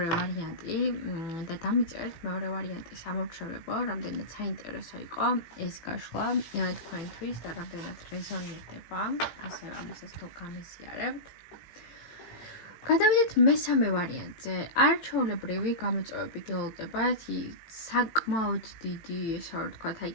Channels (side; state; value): right; late; 17 ms